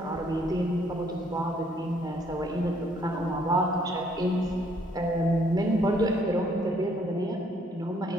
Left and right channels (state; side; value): normal; both; correlation 0.66